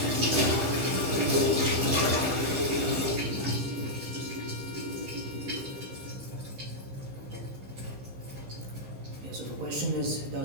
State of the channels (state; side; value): late; left; 15 ms